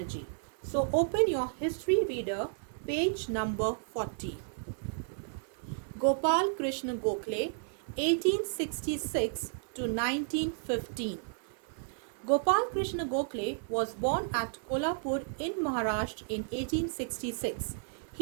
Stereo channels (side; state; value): left; silent; 56 dB below the other